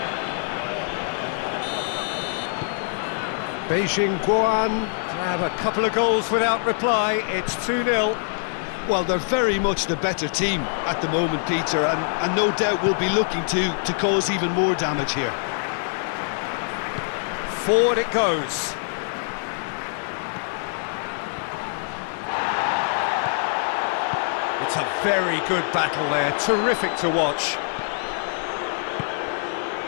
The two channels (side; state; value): right; silent; digital silence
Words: Beijing Guoan grab a couple of goals without reply. It's 2-0. Well, they're very much the better team at the moment, Peter, and no doubt will be looking to cause even more damage here. Forward it goes. It's a very good battle there, terrific to watch.